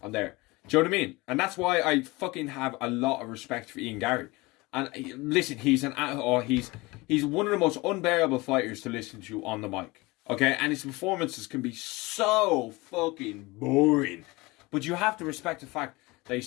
I'm there. Do you know what I mean? And that's why I fucking have a lot of respect for Ian Gary. And listen, he's one of the most unbearable fighters to listen to on the mic. Okay, and his performances can be so fucking boring. But you have to respect the fact that he's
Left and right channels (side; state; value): right; quieter; 23.0 dB